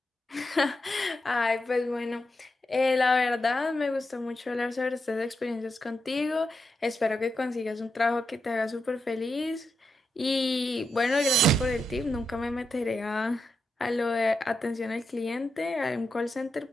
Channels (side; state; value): both; normal; correlation 0.86